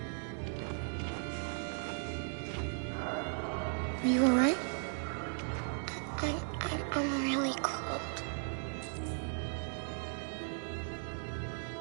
Are you all right? I'm really cold.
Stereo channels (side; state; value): left; silent; 53 dB below the other